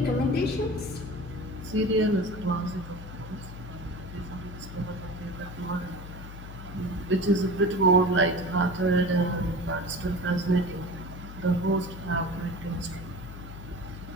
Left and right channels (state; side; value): noise; left; hum, 12 dB below the sound